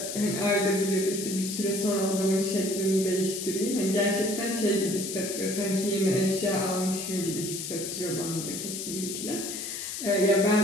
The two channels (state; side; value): noise; left; hiss, 6 dB below the sound